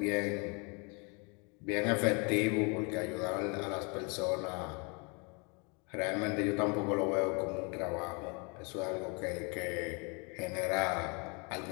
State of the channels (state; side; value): quieter; right; 32.6 dB